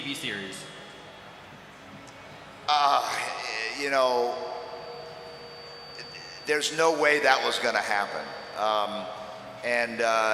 series? You know, there's no way that was going to happen.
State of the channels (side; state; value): both; identical; correlation 1.00